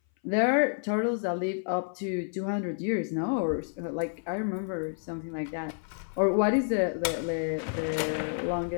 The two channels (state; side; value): silent; right; 58 dB below the other